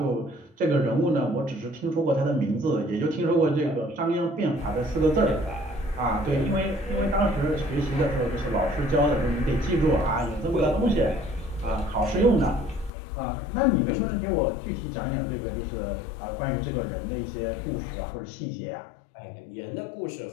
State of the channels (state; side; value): drops out; right; at 12.9 s